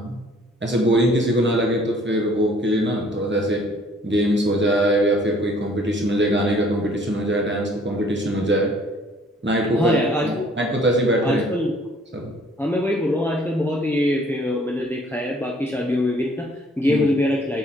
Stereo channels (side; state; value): both; normal; correlation 0.58